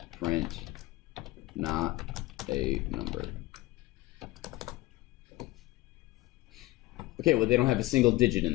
print not a number. Okay, well, they don't have a single digit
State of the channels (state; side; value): quieter; right; 19.5 dB